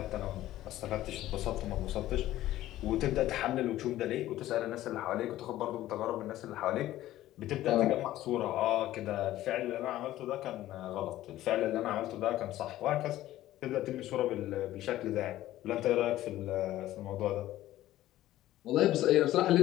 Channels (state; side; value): quieter; right; 14.6 dB